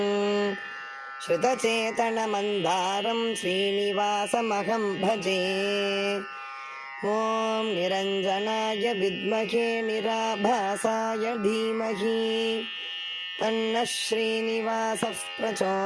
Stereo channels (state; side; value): identical; both; correlation 1.00